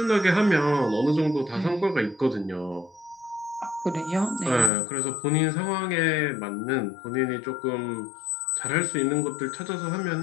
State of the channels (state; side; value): drops out; right; at 4.7 s